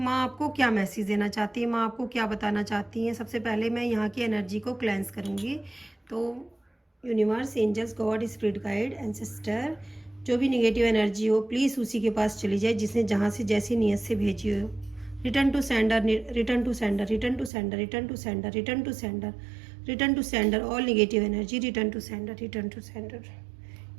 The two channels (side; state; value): left; drops out; at 17.5 s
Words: आपको क्या मैसेज देना चाहती है, माँ आपको क्या बताना चाहती हैं। सबसे पहले मैं यहाँ की एनर्जी को क्लेंस करूँगी। तो universe, angels, God, spirit guide, ancestor, जो भी निगेटिव एनर्जी हो प्लीज़ उसी के पास चली जाए जिसने जहाँ से जैसी नीयत से भेजी हो। Return to sender, return to sender, return to sender, return to sender, return to sender, return to sender, all negative energy return to sender, return to sender.